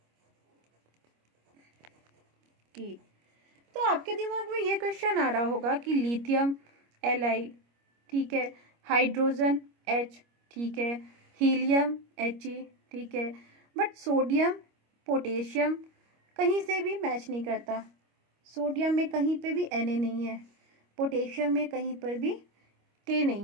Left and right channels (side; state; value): left; late; 25 ms